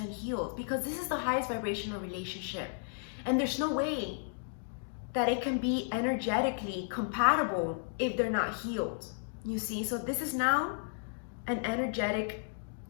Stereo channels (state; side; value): silent; right; digital silence